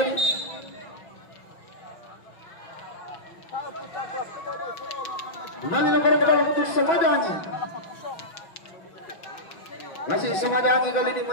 Kembali lemparan ke dalam untuk Semada Angin. Masih Semada Angin kali ini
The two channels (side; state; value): right; late; 6.0 ms